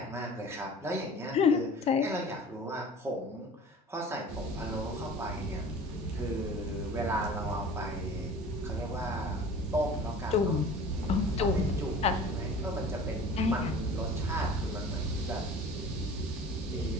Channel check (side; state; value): both; normal; correlation 0.43